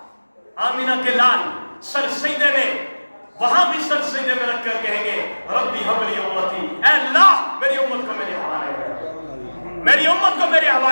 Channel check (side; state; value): both; inverted; correlation -1.00